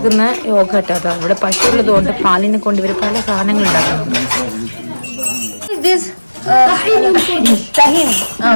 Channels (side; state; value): both; inverted; correlation -1.00